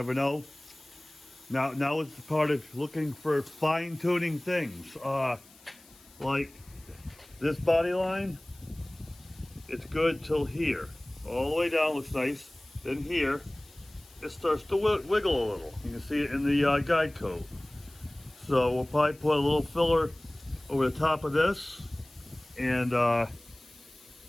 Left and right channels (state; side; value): noise; left; hiss, 26 dB below the sound